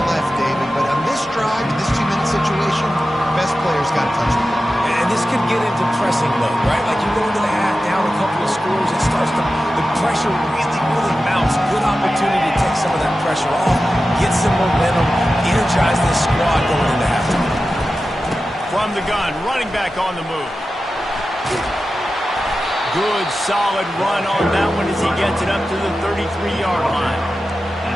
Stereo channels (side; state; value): both; normal; correlation 0.93